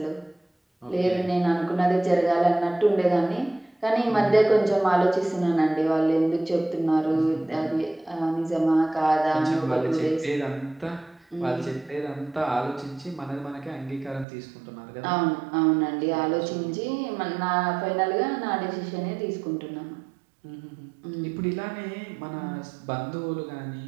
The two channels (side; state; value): left; drops out; at 14.2 s